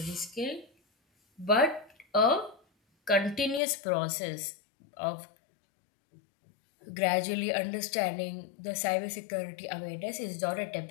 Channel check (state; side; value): drops out; right; at 3.6 s